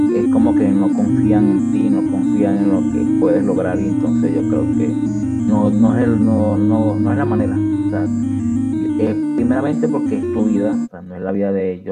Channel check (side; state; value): both; identical; correlation 1.00